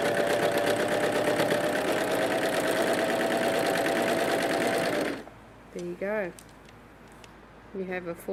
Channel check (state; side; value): identical; both; correlation 1.00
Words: There you go. You have a